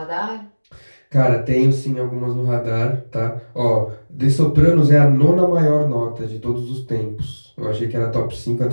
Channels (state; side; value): inverted; both; correlation -1.00